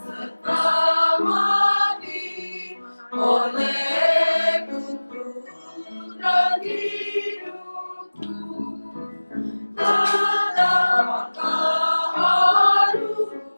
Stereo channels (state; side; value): inverted; both; correlation -1.00